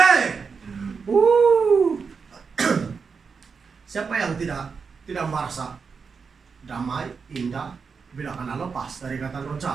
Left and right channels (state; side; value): quieter; left; 5.5 dB